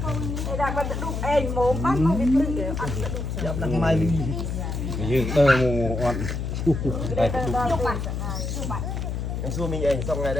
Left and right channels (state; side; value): noise; left; hum, 3 dB below the sound